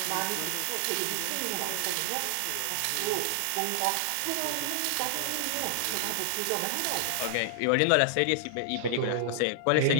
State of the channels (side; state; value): both; different; correlation -0.01